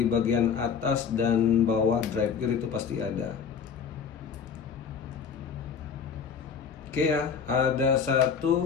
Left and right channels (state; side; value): quieter; right; 6.6 dB